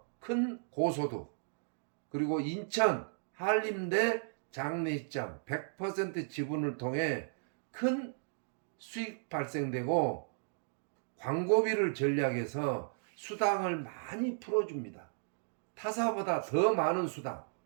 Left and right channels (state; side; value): silent; left; digital silence